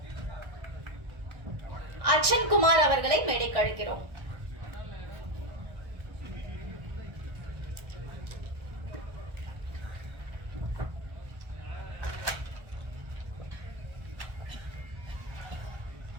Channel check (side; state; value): left; late; 1.3 ms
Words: அர்ச்சன் குமார் அவர்களை மேடைக்கு அழைக்கிறோம்.